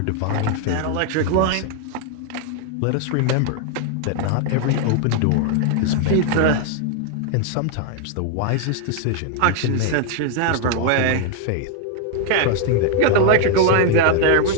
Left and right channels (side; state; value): both; different; correlation 0.00